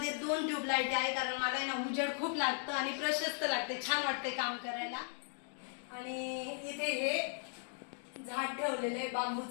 2 ट्यूबलाईट आहे, कारण मला ना उजेड खूप लागतं आणि प्रशस्त लागते, छान वाटते काम करायला. आणि इथे हे झाड ठेवलेले,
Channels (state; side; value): silent; right; 53 dB below the other